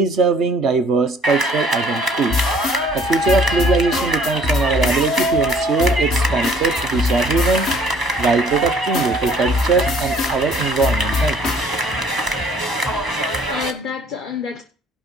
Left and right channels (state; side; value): normal; both; correlation 0.57